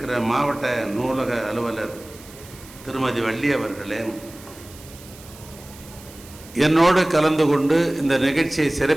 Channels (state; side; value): noise; right; hiss, 20 dB below the sound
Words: மாவட்ட நூலக அலுவலர் திருமதி வள்ளி அவர்களே, என்னோடு கலந்து கொண்டு இந்த நிகழ்ச்சியை